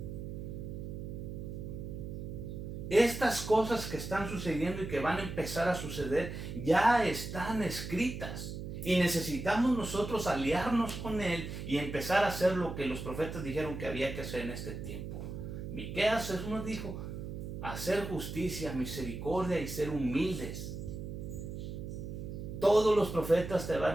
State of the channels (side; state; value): right; noise; hum, 7 dB below the sound